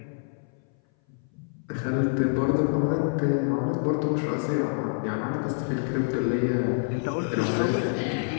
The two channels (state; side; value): silent; right; 58 dB below the other